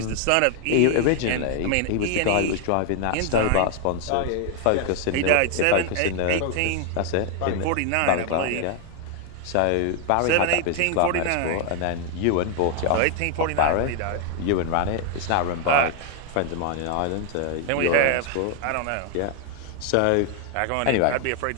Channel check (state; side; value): different; both; correlation 0.00